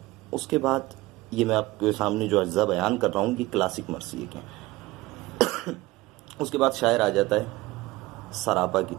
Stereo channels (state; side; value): quieter; left; 19.5 dB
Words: اس کے بعد یہ میں آپ کے سامنے جو اجزاء بیان کر رہا ہوں یہ کلاسک مرثیے کے ہیں۔ اس کے بعد شاعر آ جاتا ہے سراپا کی